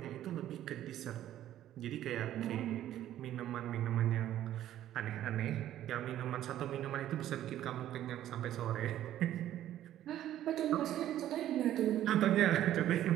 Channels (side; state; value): left; quieter; 12.4 dB